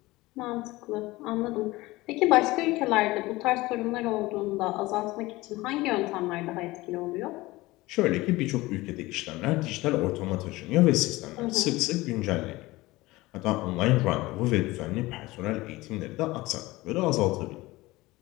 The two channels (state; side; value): quieter; right; 19.9 dB